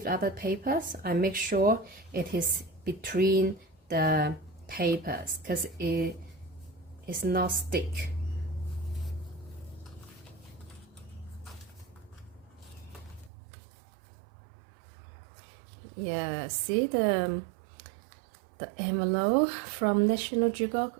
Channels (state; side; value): drops out; left; at 13.3 s